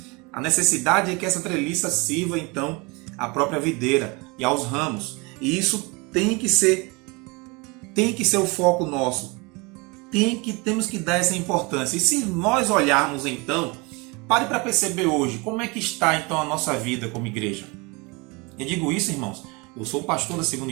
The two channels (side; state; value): left; quieter; 27.5 dB